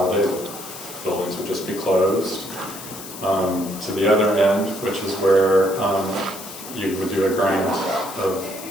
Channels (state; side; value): noise; left; hiss, 13 dB below the sound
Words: The buildings would just be closed. To the other end, which is where you would do a grant of